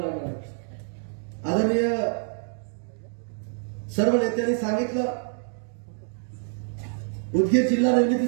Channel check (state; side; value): silent; left; digital silence